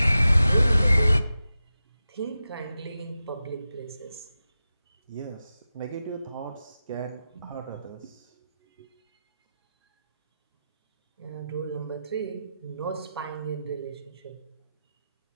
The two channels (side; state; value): both; inverted; correlation -0.92